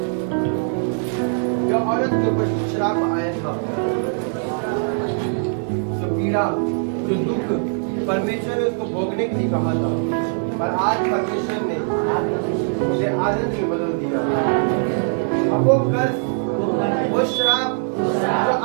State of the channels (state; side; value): silent; left; 60 dB below the other